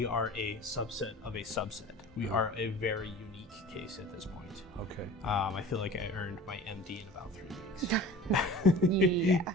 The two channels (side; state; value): both; normal; correlation 0.40